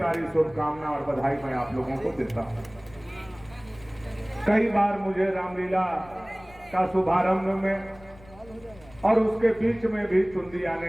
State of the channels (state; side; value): noise; left; rumble, 23 dB below the sound